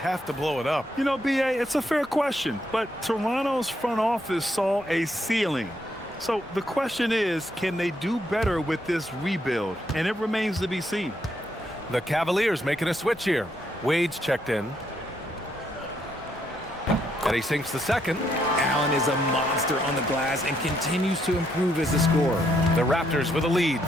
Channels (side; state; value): both; normal; correlation 0.75